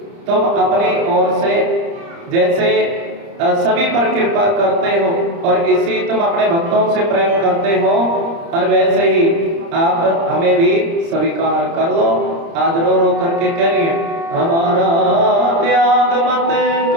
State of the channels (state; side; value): late; left; 30 ms